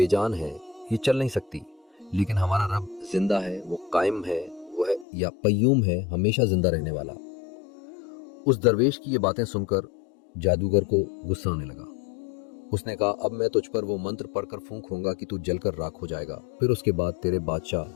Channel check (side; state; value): right; drops out; at 5.1 s